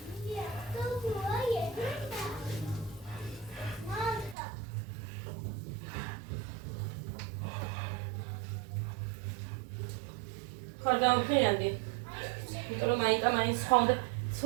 ხარ დავფრიანდი. იმიტომ რომ მაიტა მაინც სხვა უნდა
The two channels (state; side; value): drops out; left; at 4.4 s